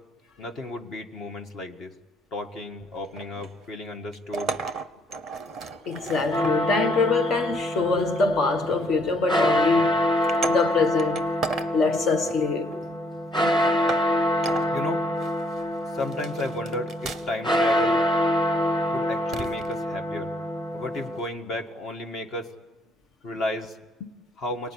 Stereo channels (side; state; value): both; normal; correlation 0.67